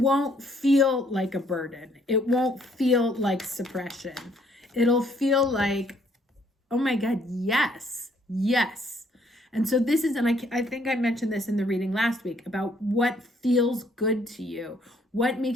feel like a burden. It won't feel like suppression. It'll feel like, oh my God, yes, yes. And so this is, and I think I mentioned this in the reading last week, about what feels good to you, what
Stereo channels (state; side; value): normal; both; correlation 0.66